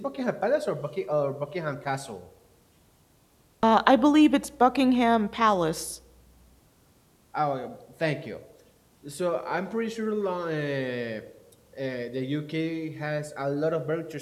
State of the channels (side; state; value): both; identical; correlation 1.00